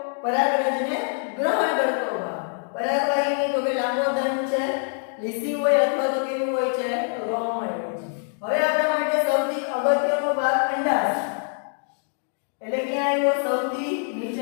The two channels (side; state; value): right; silent; digital silence